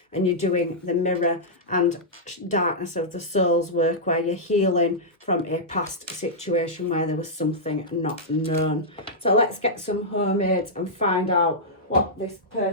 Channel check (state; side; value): normal; both; correlation -0.11